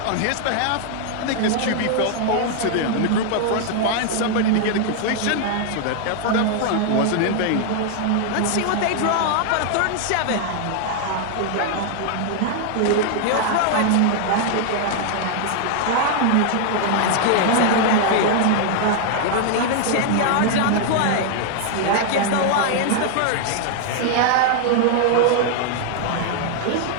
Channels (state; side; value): different; both; correlation 0.00